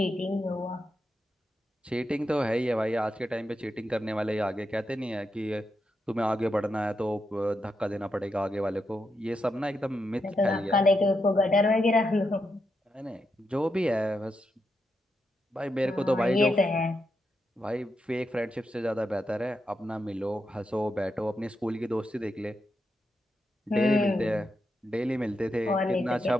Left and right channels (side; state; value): both; normal; correlation 0.84